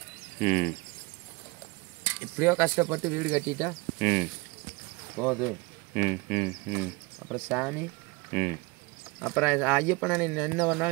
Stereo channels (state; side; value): quieter; left; 25.6 dB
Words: எப்படியோ கஷ்டப்பட்டு வீடு கட்டிட்டா போகுது. அப்புறம் சாமி, அப்புறம் ஐயப்பனை என்ன